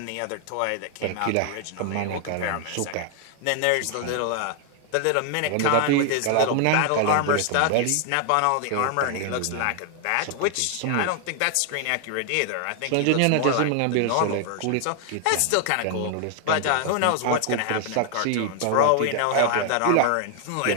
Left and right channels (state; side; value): different; both; correlation 0.00